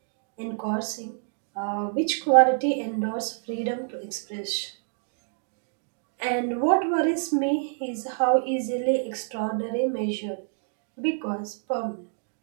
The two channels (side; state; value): left; silent; digital silence